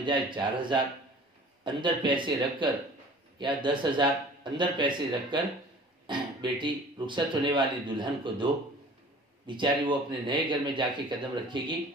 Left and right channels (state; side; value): normal; both; correlation 0.46